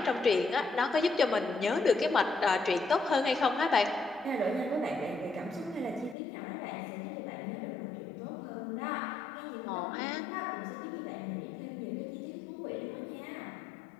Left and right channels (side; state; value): right; drops out; at 6.2 s